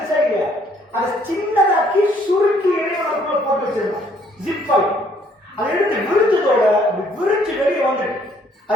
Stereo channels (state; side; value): normal; both; correlation 0.64